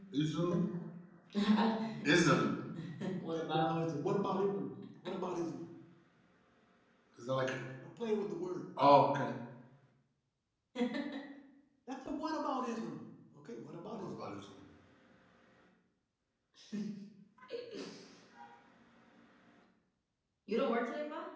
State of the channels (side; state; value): both; identical; correlation 1.00